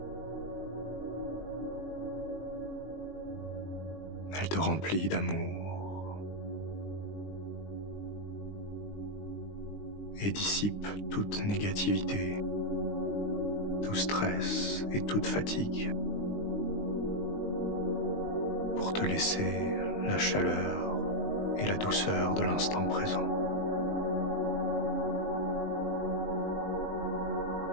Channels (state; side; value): late; right; 20 ms